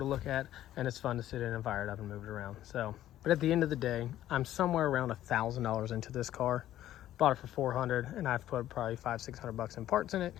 look at, and it's fun to sit in and fire it up and move it around. So. But at the end of the day, I'm somewhere around $1,000 into this car. Bought it for $400, and I've put probably $500-600 in parts in it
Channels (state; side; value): quieter; right; 12.9 dB